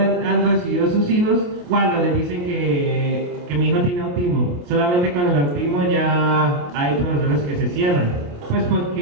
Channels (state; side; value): late; left; 28 ms